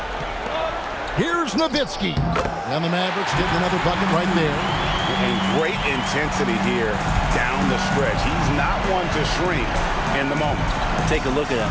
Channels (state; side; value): identical; both; correlation 1.00